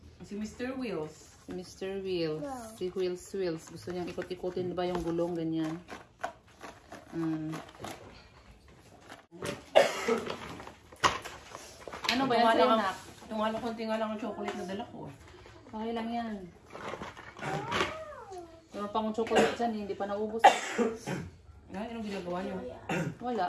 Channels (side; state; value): both; identical; correlation 1.00